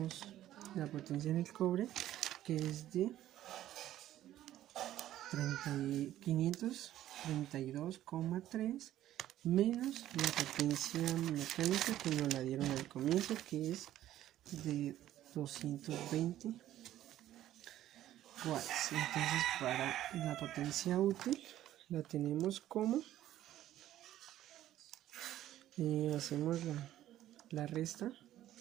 la potencia en el cobre, que es de 532,3 menos la potencia mecánica que nos la dieron al comienzo, que es de 220 watts. Entonces para la potencia útil la tenemos como hacemos la resta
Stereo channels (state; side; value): quieter; left; 13.0 dB